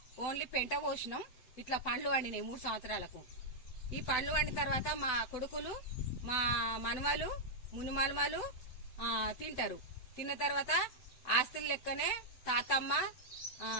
ఓన్లీ పెంట పోసినాం. ఇట్లా పండ్లు వండినాయి 3 సంవత్సరాలకు. ఈ పండ్లు వండిన తర్వాత మా కొడుకులు, మా మనవలు, మునిమనమలు తింటారు. తిన్న తర్వాత ఆస్తుల లెక్కనే తాతమ్మ,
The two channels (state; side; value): late; right; 7.9 ms